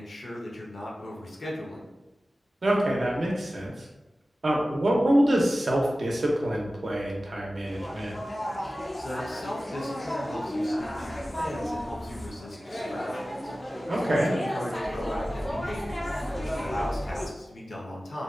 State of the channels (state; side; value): normal; both; correlation 0.96